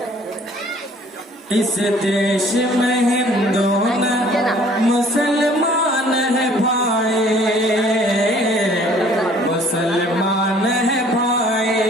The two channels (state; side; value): normal; both; correlation 0.55